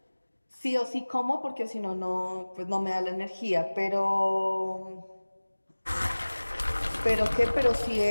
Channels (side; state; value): both; inverted; correlation -1.00